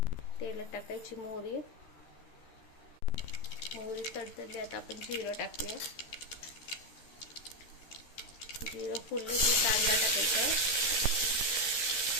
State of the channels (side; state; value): right; late; 13 ms